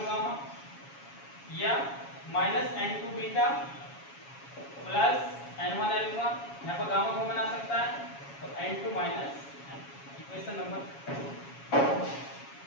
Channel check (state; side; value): late; right; 7.2 ms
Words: gamma, या minus n2 beta plus n1 alpha, यहाँ पर गामा को बना सकता है तो n2 माइनस। इक्वेशन नंबर